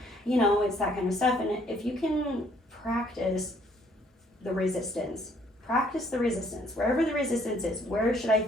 It's that kind of stuff. And if you can practice the resistance, wherever the resistance is, where should I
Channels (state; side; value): normal; both; correlation 0.64